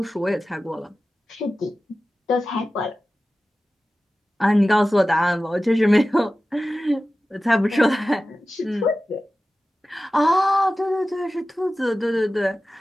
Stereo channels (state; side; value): normal; both; correlation 0.95